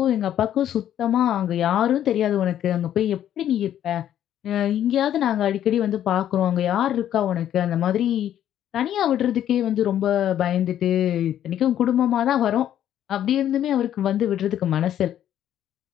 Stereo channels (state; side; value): quieter; right; 10.9 dB